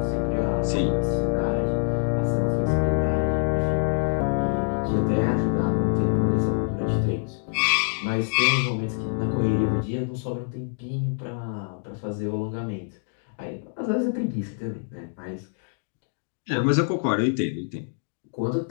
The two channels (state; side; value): silent; right; digital silence